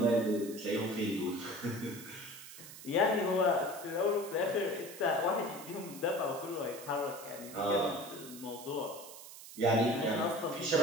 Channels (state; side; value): noise; right; hiss, 15 dB below the sound